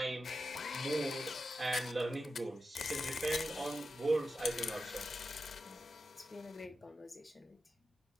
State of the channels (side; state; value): both; normal; correlation 0.90